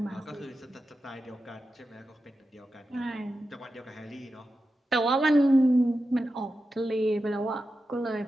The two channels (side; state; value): both; normal; correlation 0.91